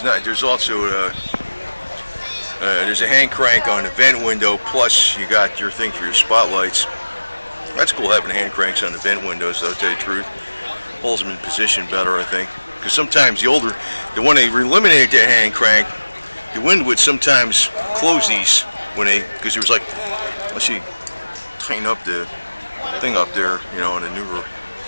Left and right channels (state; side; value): inverted; both; correlation -1.00